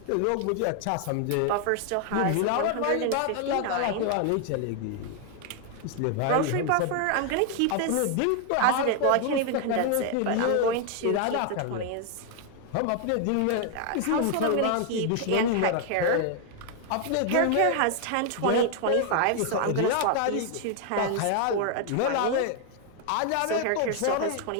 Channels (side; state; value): both; different; correlation 0.00